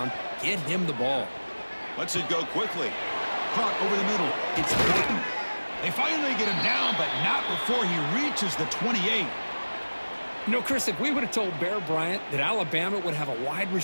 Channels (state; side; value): inverted; both; correlation -1.00